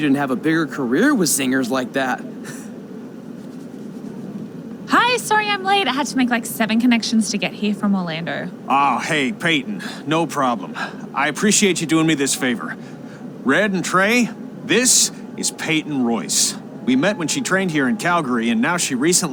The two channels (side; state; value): both; identical; correlation 1.00